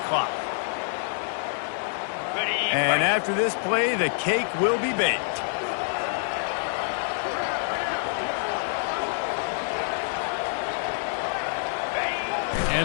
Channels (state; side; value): silent; right; digital silence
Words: And after this play, the cake will be baked.